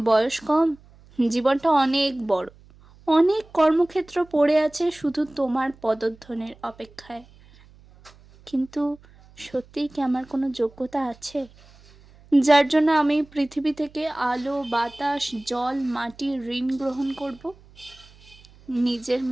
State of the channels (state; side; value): noise; right; hum, 26 dB below the sound